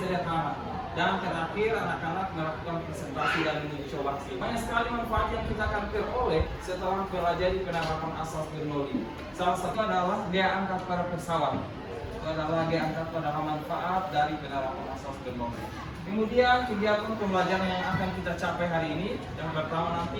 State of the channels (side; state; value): both; identical; correlation 1.00